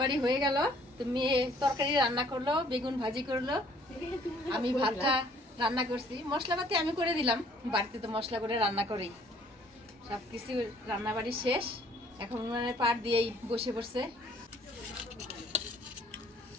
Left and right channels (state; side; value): normal; both; correlation 0.59